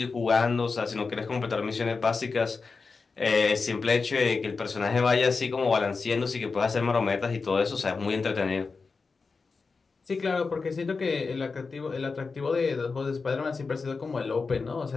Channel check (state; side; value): quieter; right; 4.5 dB